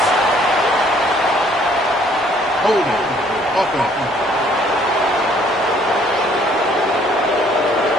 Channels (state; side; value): normal; both; correlation 0.61